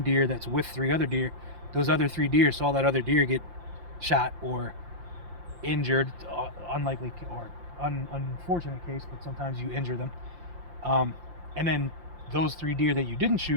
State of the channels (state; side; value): late; left; 5.7 ms